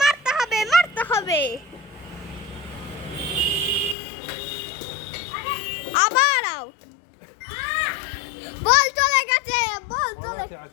মারতে হবে আবার আউট বল চলে গেছে বল বল চলে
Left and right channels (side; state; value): right; drops out; at 4.0 s